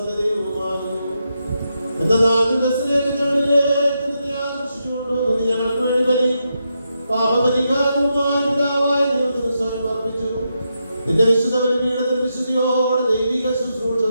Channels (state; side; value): inverted; both; correlation -0.84